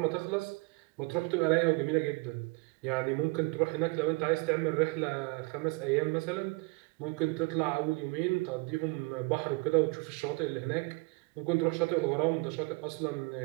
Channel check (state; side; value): quieter; left; 28.5 dB